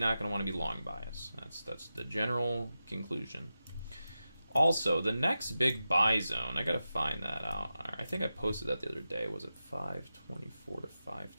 going to want to be long bias. That's the general conclusion. Also, the next big buy zone, I gotta find that out. I think I posted that the other day. Was it 524 to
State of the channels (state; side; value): inverted; both; correlation -0.92